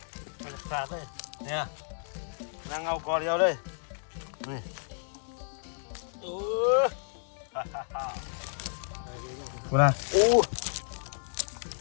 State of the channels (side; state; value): right; silent; digital silence